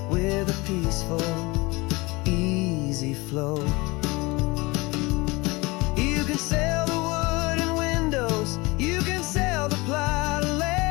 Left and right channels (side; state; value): right; quieter; 23.8 dB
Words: with a peaceful, easy flow. You can sell the wood and windows, you can sell the plot of